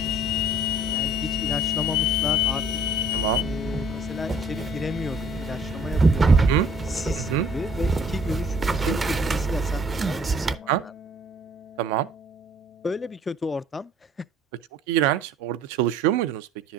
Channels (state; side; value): normal; both; correlation 0.55